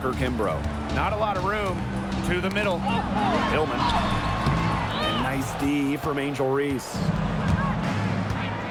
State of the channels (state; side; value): identical; both; correlation 1.00